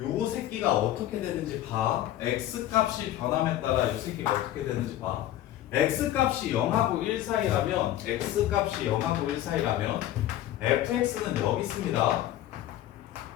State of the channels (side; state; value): right; quieter; 13.2 dB